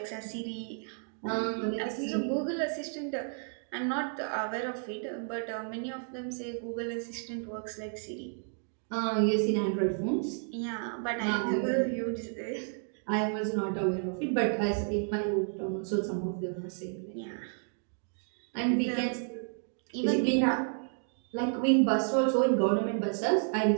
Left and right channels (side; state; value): left; silent; 57 dB below the other